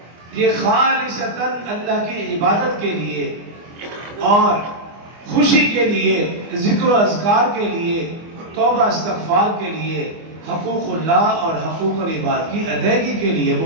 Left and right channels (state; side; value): late; left; 24 ms